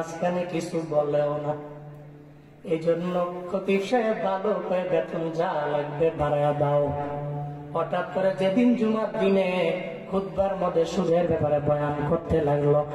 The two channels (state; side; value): identical; both; correlation 1.00